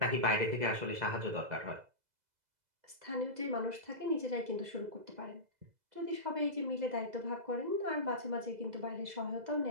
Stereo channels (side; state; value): left; late; 2.0 ms